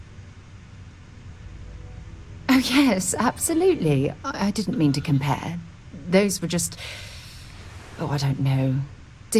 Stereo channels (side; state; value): both; identical; correlation 1.00